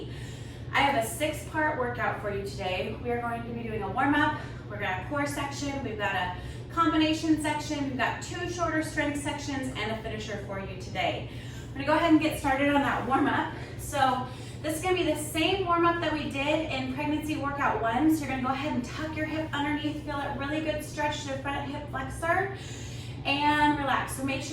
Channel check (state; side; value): identical; both; correlation 1.00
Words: I have a 6-part workout for you today. We are going to be doing a warm-up. We're going to have a core section. We've got a combination section. We've got 2 shorter strength sections and a finisher for you today. I'm going to go ahead and get started on that warm-up. So this is going to be the same warm-up that we did in pregnancy workout 1. So you're going to go ahead and tuck your hip underneath, feel a really good stretch to the front hip flexor, and relax. So make